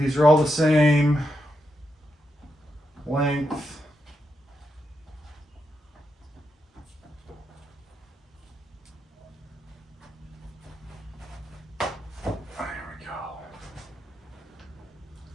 are all the same length.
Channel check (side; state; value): both; normal; correlation 0.84